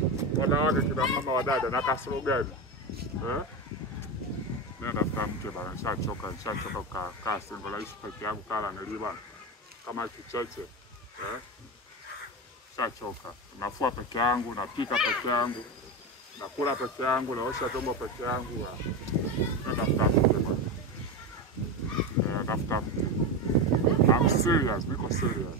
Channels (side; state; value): both; normal; correlation 0.18